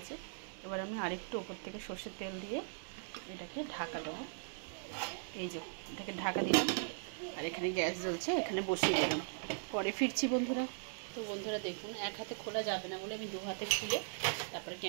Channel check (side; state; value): left; silent; digital silence